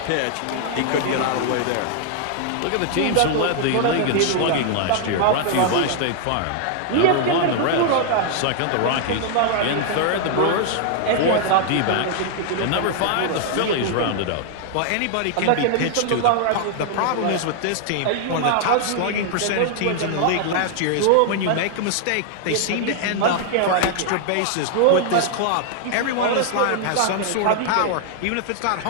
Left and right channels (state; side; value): different; both; correlation 0.00